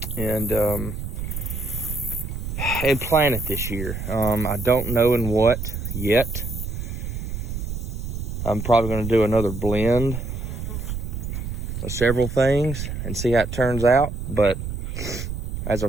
and plant it this year. I don't know in what yet. I'm probably gonna do another blend of several things and see how it turns out. But as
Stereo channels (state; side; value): noise; right; rumble, 5 dB below the sound